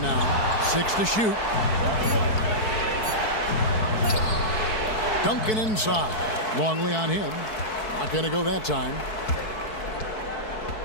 now. 6 to shoot. Duncan inside. Longley on him. Not going to go that time.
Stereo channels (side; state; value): right; late; 4.6 ms